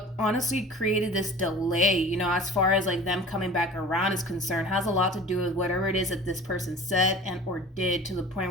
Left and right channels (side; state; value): both; normal; correlation 0.41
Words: honestly created this delay, you know, as far as like them coming back around is concerned, has a lot to do with whatever it is that this person said and or did, to the point